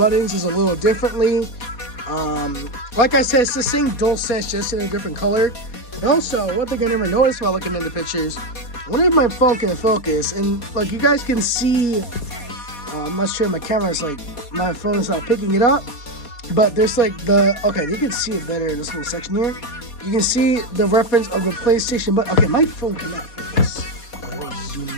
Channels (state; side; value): late; right; 4.2 ms